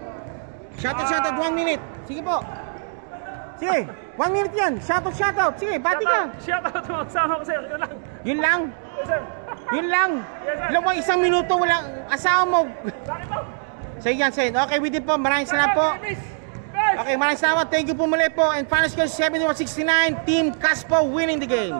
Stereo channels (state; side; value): silent; left; digital silence